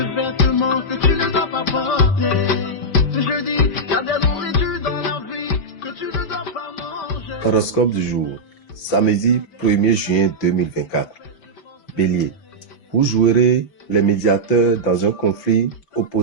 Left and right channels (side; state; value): right; late; 5.1 ms